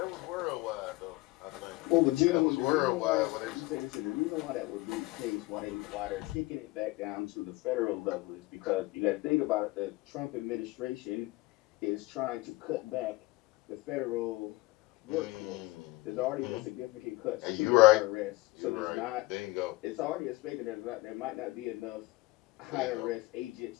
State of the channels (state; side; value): quieter; right; 21.1 dB